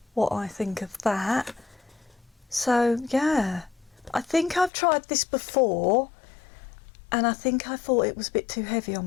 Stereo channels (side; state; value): right; drops out; at 4.7 s